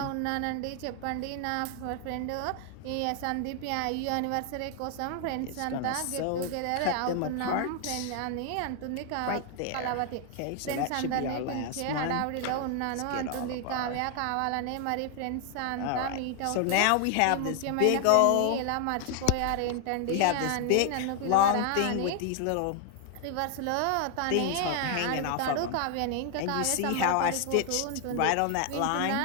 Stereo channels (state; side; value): different; both; correlation 0.00